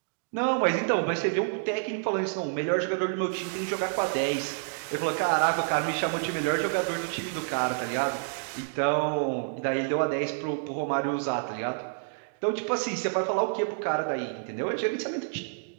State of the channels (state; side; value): silent; left; digital silence